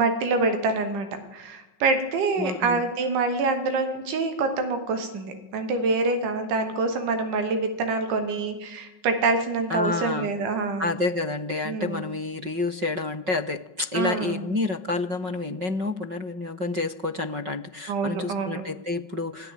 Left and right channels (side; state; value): left; late; 5.4 ms